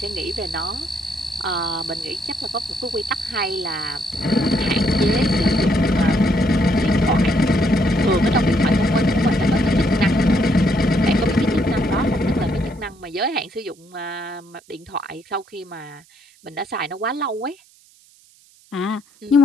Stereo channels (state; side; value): noise; right; hiss, 29 dB below the sound